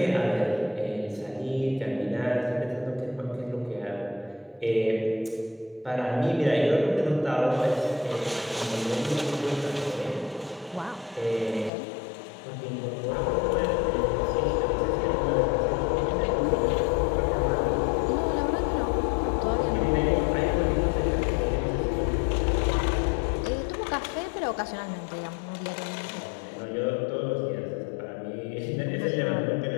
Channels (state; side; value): drops out; right; at 11.7 s